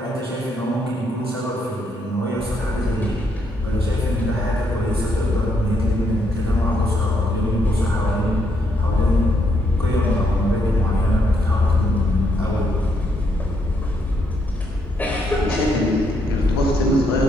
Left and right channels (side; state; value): both; normal; correlation 0.75